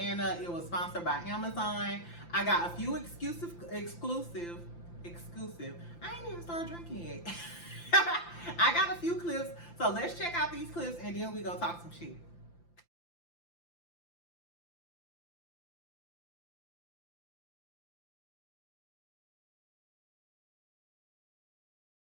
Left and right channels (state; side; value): late; right; 5.9 ms